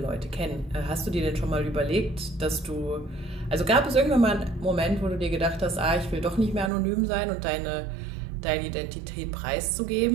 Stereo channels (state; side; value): drops out; left; at 6.7 s